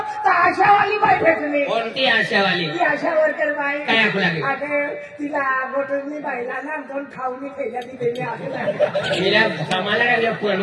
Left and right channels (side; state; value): both; identical; correlation 1.00